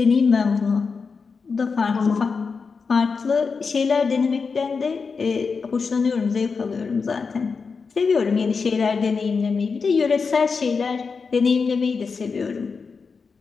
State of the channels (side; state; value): right; quieter; 5.1 dB